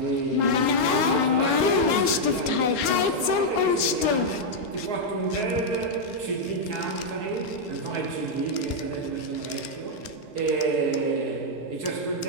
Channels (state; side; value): late; left; 4.0 ms